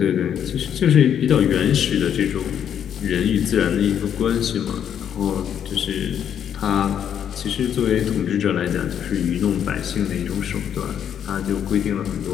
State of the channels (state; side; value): quieter; right; 9.0 dB